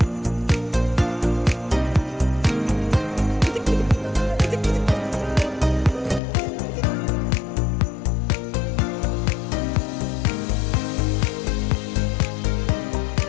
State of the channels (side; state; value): right; drops out; at 6.2 s